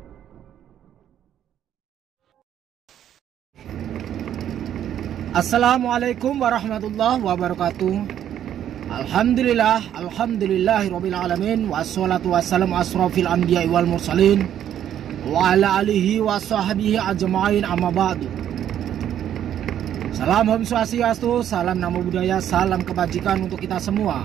Assalamualaikum warahmatullahi wabarakatuh. Alhamdulillahirabbil alamin wassalatu wassalamu asrofil anbiya'i wal mursalin wa ala alihi wa sahbihi ajma'in amma ba'du. Salam Om Swastiastu, salam Namo Buddhaya, salam kebajikan untuk kita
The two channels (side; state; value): left; quieter; 10.4 dB